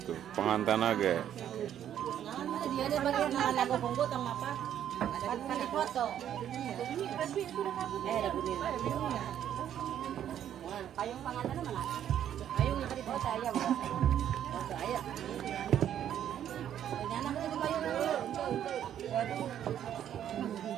Pengantin aja. Dia ada bagian lagu punggu tong apa? Ada foto. Ada bunyi. Payung pengantin mana? Payung yang tadi foto ayam. Foto ayam. Nyana itu payung.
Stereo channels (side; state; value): left; quieter; 10.3 dB